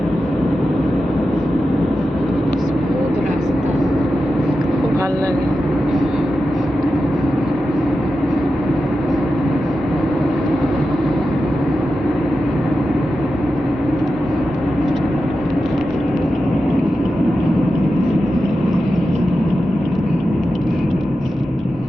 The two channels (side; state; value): both; normal; correlation 0.91